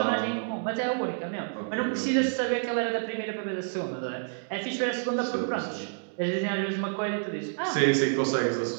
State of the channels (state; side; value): silent; left; digital silence